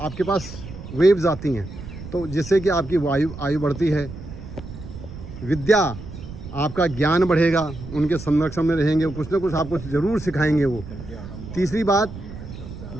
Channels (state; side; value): noise; right; rumble, 12 dB below the sound